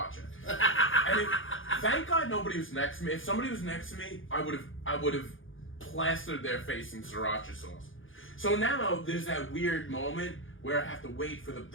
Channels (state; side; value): late; right; 0.58 ms